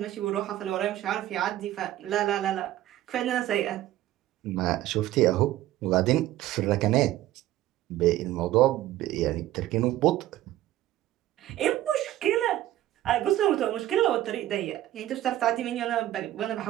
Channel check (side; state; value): left; quieter; 14.1 dB